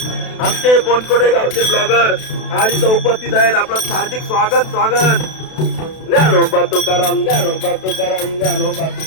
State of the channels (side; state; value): right; late; 32 ms